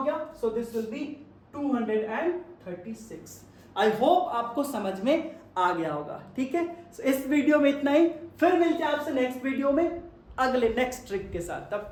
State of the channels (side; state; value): both; identical; correlation 1.00